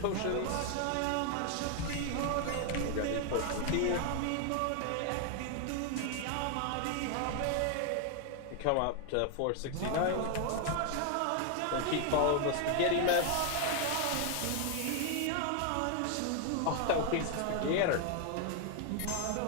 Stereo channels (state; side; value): different; both; correlation 0.00